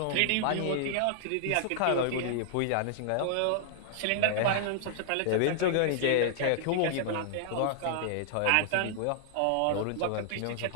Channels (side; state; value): both; different; correlation -0.01